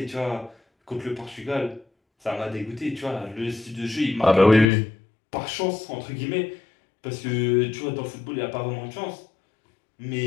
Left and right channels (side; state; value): right; drops out; at 4.7 s